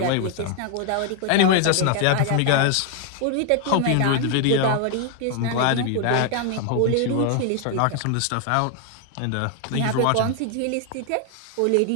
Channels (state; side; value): different; both; correlation 0.00